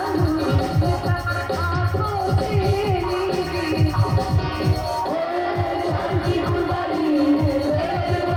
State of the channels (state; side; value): identical; both; correlation 1.00